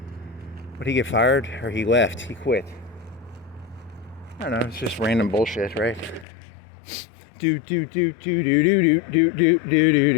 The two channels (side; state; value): right; drops out; at 6.2 s